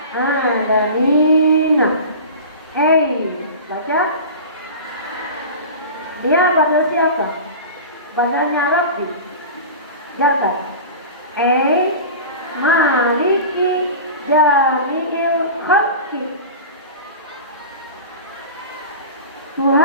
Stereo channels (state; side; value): inverted; both; correlation -0.34